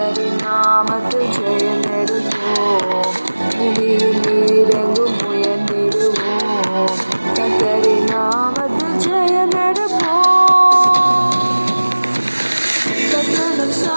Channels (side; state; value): both; inverted; correlation -1.00